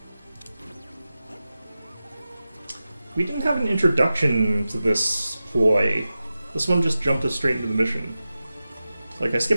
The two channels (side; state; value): both; inverted; correlation -0.94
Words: We didn't have an introduction to this ploy. This one just jumped us straight into the mission. Like, I